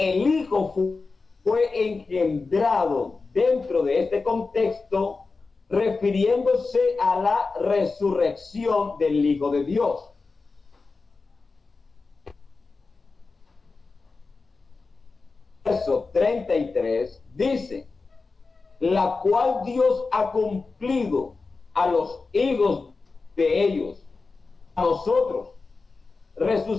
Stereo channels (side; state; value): right; quieter; 4.1 dB